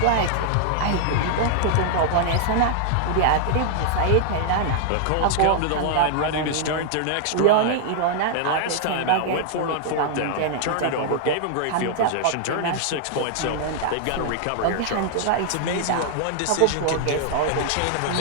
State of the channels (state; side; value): different; both; correlation -0.01